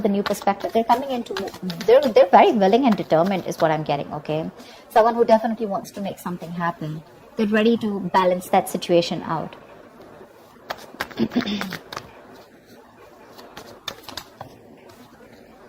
a new perspective. They're coming in they're very willing and determined is what I'm getting, okay? Someone who definitely wants to make something happen. They're ready to balance that situation out.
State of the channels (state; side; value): identical; both; correlation 1.00